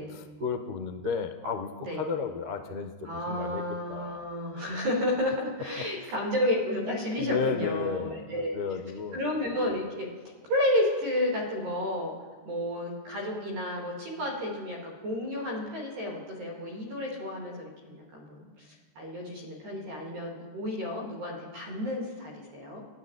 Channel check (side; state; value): left; late; 13 ms